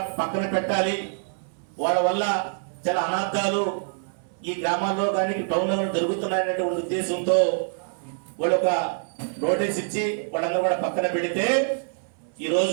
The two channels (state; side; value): silent; left; 61 dB below the other